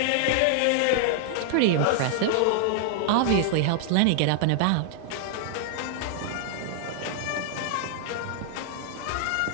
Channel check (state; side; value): different; both; correlation 0.00